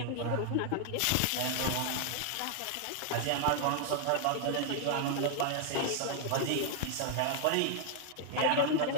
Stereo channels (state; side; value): different; both; correlation 0.00